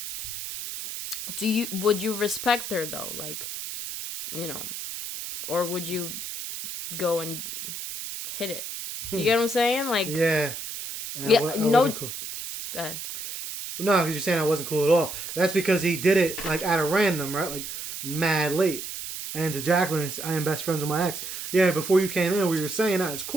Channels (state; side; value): noise; right; hiss, 7 dB below the sound